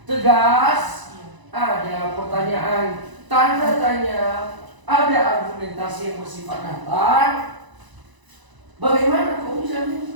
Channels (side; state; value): left; late; 1.0 ms